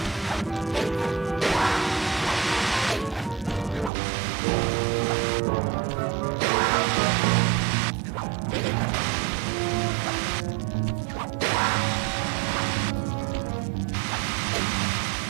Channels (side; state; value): left; drops out; at 3.9 s